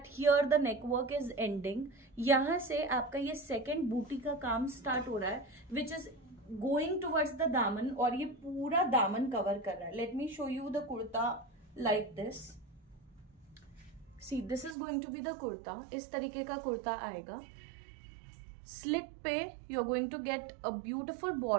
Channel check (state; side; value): drops out; left; at 14.8 s